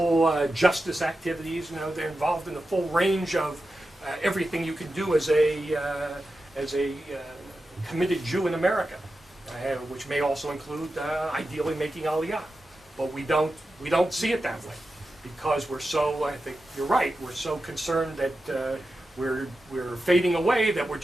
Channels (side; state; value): both; normal; correlation 0.91